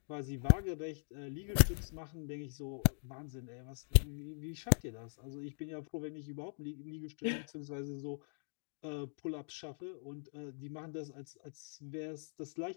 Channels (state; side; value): silent; right; digital silence